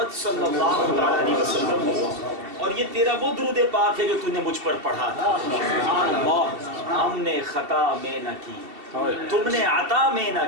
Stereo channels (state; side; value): late; left; 2.7 ms